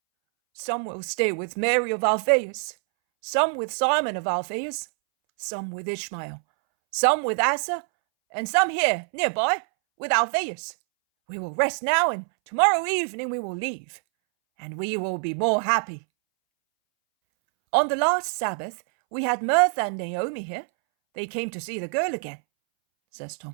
Some will stay with Mary of Alphaeus, some with Simon of Alphaeus, some with Ishmael, some with Asa, and some here, nearby, with Alphaeus. We will rest now, and tomorrow evening we will leave, and we will be more happy. On the last Sabbath, we had Martha and Naomi here. They came to see the girl again, says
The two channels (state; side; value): silent; left; 62 dB below the other